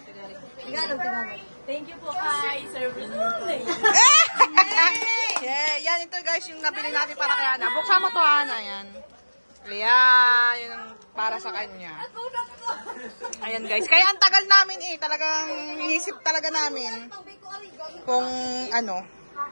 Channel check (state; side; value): inverted; both; correlation -1.00